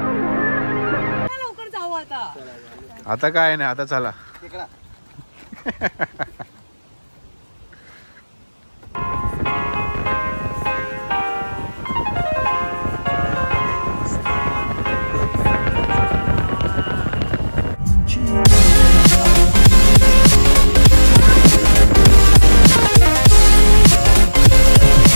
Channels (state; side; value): inverted; both; correlation -1.00